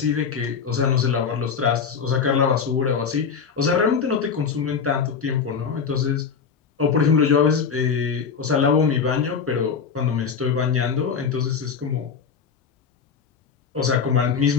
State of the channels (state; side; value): quieter; right; 6.2 dB